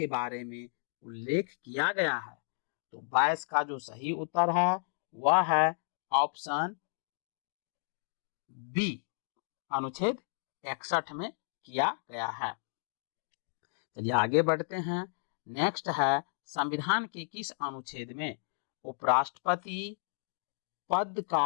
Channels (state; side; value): silent; right; digital silence